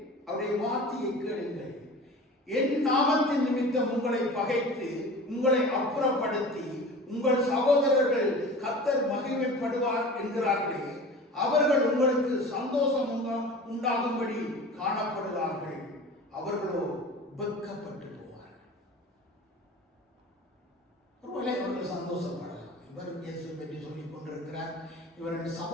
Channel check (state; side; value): normal; both; correlation 0.38